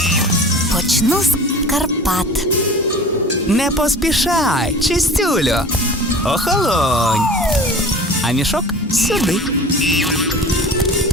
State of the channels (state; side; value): normal; both; correlation 0.39